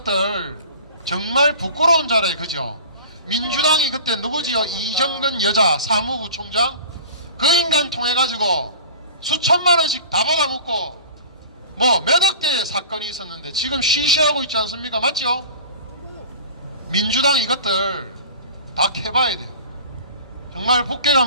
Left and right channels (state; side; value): inverted; both; correlation -0.41